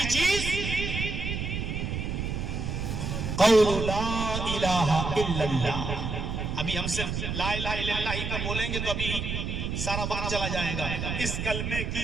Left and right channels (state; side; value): noise; right; rumble, 3 dB below the sound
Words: چیز قول لا الہ الا اللہ۔ ابھی ہم صرف لا الہ الا اللہ ہی پر بولیں گے تو ابھی سارا وقت چلا جائے گا۔ اس کلمے